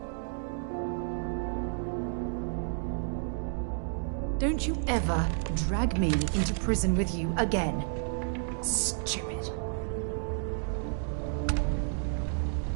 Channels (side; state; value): left; silent; 57 dB below the other